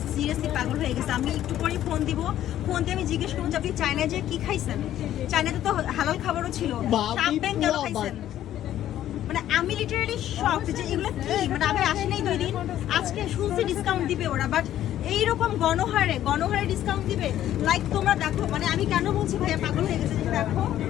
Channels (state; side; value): quieter; right; 12.2 dB